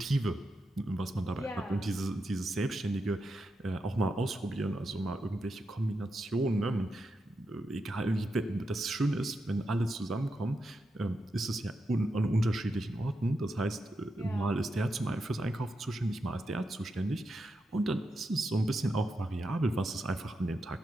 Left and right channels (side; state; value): both; normal; correlation 0.86